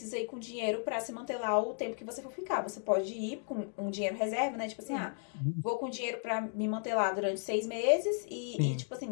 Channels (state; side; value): silent; right; 55 dB below the other